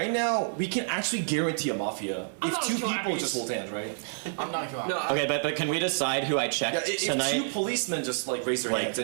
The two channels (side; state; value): left; silent; 57 dB below the other